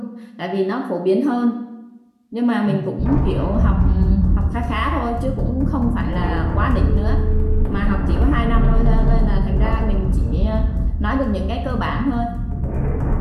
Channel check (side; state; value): both; identical; correlation 1.00